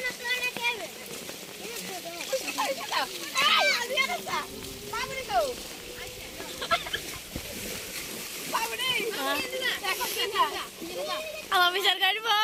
আমার বিচার কাটবো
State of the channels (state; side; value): identical; both; correlation 1.00